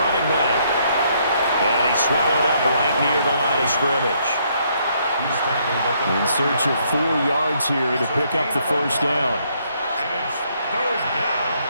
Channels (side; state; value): both; inverted; correlation -0.70